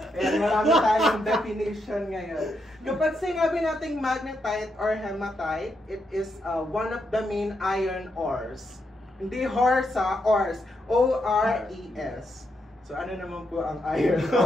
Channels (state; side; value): normal; both; correlation 0.81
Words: Ayan, marami tayong definition ngayon. Kapag sinabi nating magnetite or hematite, it is one of the main iron ores. Hindi horse, ores. O-R-E-S. So, ano naman po ang iron